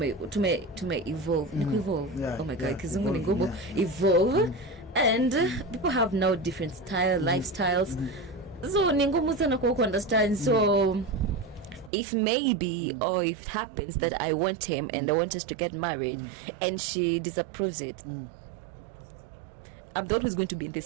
tume evolve ni evolve. Yeah, Oh my god, yeah, kizungu ni evolve, ngumu. Evolve and people have now different lifestyles, so ni ngumu sana kwa understand. So if maybe or if it happens that I want him and I want us to get married and she disapproves it, I'm the one who's going to be in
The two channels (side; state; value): left; drops out; at 11.9 s